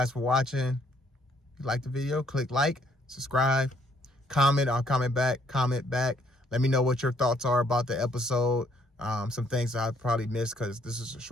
for watching. If you like the video, click like, subscribe, comment. I'll comment back. Let me know what your thoughts are about the episode. Some things I probably missed because this is a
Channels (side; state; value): both; normal; correlation 0.67